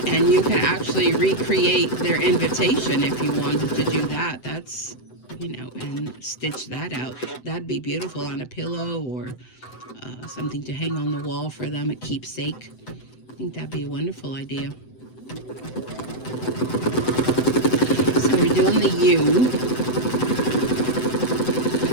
and you can actually recreate their invitation if you wanted to do that. That's, you know, and stitch that out. That'd be beautiful on a pillow, or something to hang on the wall for them, a keepsake. I think that'd be a wonderful idea. So we're doing the U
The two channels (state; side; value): late; right; 7.9 ms